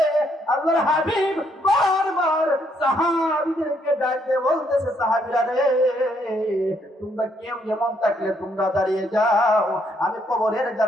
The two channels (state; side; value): normal; both; correlation 0.72